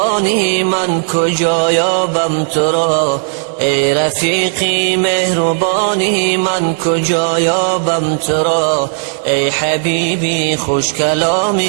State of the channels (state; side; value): silent; left; 71 dB below the other